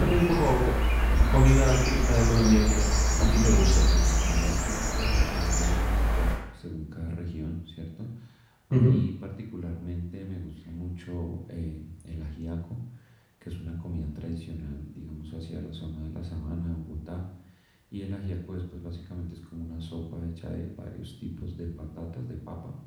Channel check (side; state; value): both; identical; correlation 1.00